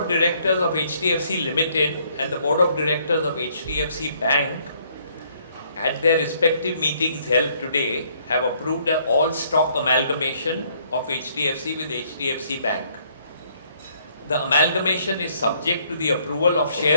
directors of HDFC Ltd and the board of directors of HDFC Bank, at their respective meetings held today, have approved an all-stock amalgamation of HDFC with HDFC Bank. The amalgamation is subject to the approval of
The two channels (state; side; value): inverted; both; correlation -0.66